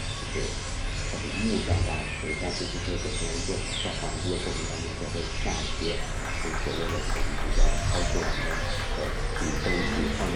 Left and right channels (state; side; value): identical; both; correlation 1.00